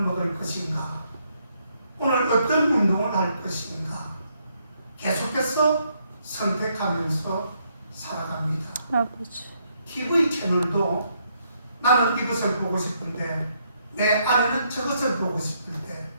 먹을 것인가, 오늘 어떤 운동을 할 것인가, 계속해서 선택하면서 살아갑니다. 아버지. TV 채널도 나는 이것을 보고 싶은데 내 아내는 저것을 보고 싶을 때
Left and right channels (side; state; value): both; inverted; correlation -0.74